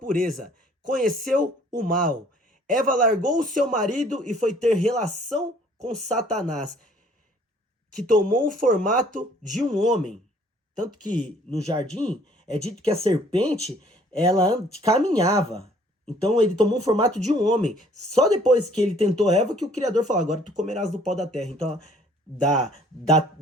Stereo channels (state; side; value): normal; both; correlation 0.58